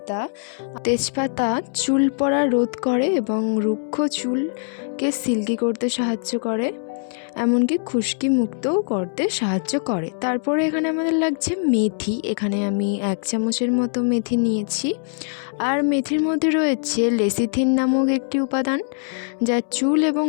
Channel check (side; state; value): right; silent; 64 dB below the other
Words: তেজপাতা চুল পড়া রোধ করে এবং রুক্ষ চুলকে সিল্কি করতে সাহায্য করে, এমনকি খুশকি মুক্তও করতে সাহায্য করে। তারপরে এখানে আমাদের লাগছে মেথি। এখানে আমি 1 চামচের মতো মেথি নিয়েছি। আর মেথির মধ্যে রয়েছে লেসিথিন নামক একটি উপাদান, যা চুল এবং